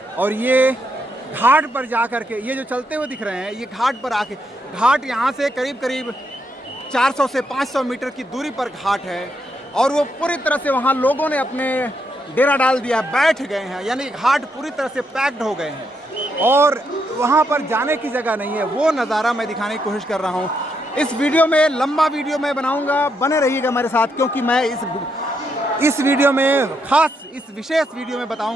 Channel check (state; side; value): normal; both; correlation 0.79